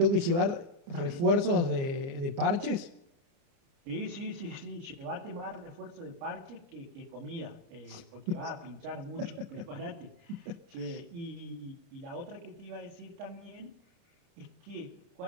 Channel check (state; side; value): late; left; 29 ms